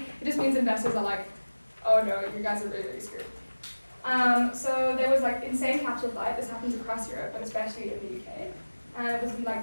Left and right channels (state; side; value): inverted; both; correlation -1.00